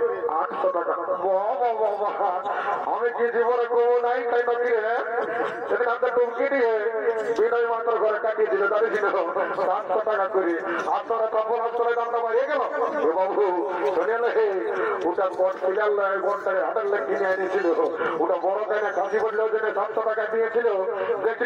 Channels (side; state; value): both; identical; correlation 1.00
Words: 800 টাকা আমি কি জীবনে কবো নাই তাই নাকি সেদিন হাতে টুমকি দিয়ে বিনয় মাত্র ঘরে কাটিয়েছিল জানিস 700 টাকা করে আপনারা তখন অঞ্চলের দামটা বাড়িয়ে গেল বাবু শুনে ওটা বট ফিলাল বনটাকে হাতের লেগ কিনে এনেছিল ওটা বড় তাই না কাশি বটলে ওই জন্য 700 টাকা দিয়েছিল দেখছি